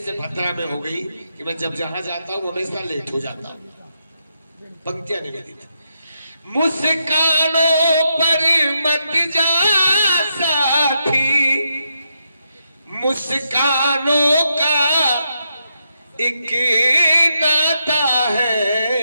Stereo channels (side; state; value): both; inverted; correlation -0.81